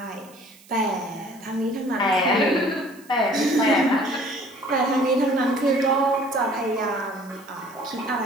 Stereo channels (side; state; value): right; noise; hiss, 25 dB below the sound